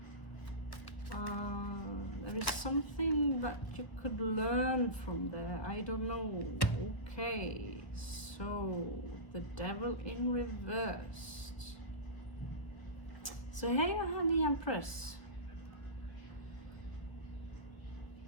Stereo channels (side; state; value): right; late; 1.1 ms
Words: There is something that you could learn from there. I don't know. Okay, so the Devil in reversed. So here you have the Empress.